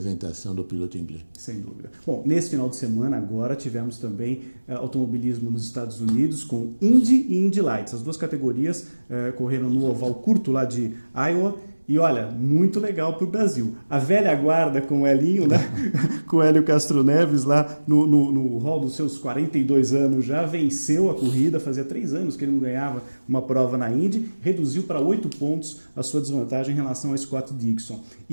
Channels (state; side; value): inverted; both; correlation -1.00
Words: do piloto inglês. Sem dúvida. Bom, nesse final de semana agora tivemos também automobilismo nos Estados Unidos com Indy e Indy Lights. As duas categorias correram no oval curto lá de Iowa. E olha, muito legal para o Brasil. A velha guarda com o Elinho, né? Com o Hélio Castro Neves lá no hall dos seus 42 anos, já venceu a corrida. Fazia 3 anos que ele não ganhava uma prova na Indy. Reduziu para 8 pontos a sua desvantagem em relação a Scott Dixon.